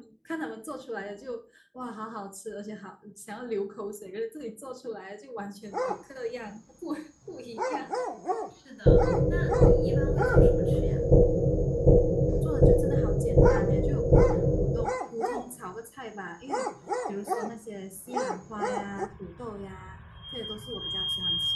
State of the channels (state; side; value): identical; both; correlation 1.00